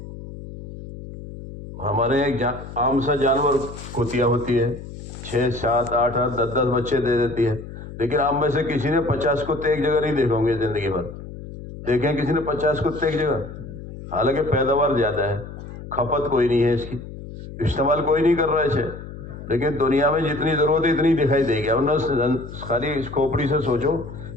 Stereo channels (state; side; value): noise; left; hum, 12 dB below the sound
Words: ہمارے ایک عام سا جانور کتیا ہوتی ہے، 6، 7، 8، 10 بچے دے دیتی ہے. لیکن آپ میں سے کسی نے 50 کتے ایک جگہ نہیں دیکھے ہوں گے زندگی بھر. دیکھیں کسی نے 50 کتے ایک جگہ؟ حالانکہ پیداوار زیادہ ہے، کھپت کوئی نہیں ہے اس کی، استعمال کوئی نہیں کر رہا ہے اسے. لیکن دنیا میں جتنی ضرورت ہے اتنی دکھائی دے گی. ورنہ خالی اس کھوپڑی سے سوچو